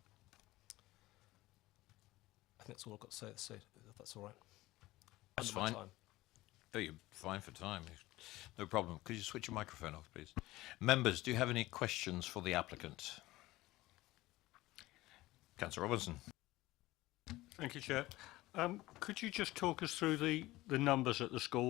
I think that's all I've got to say, if that's all right. That's Under my fine. time. Oh, you're fine for time. No problem. Could you switch your microphone off, please? Members, do you have any questions for the applicant? Councillor Robinson. Thank you, Chair. Could you just talk us through the numbers at the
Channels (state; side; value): quieter; right; 18.3 dB